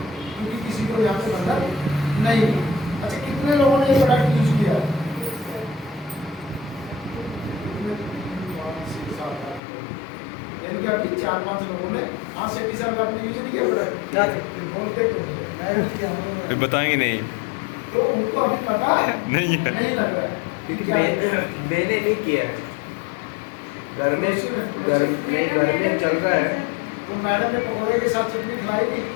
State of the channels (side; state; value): right; drops out; at 9.6 s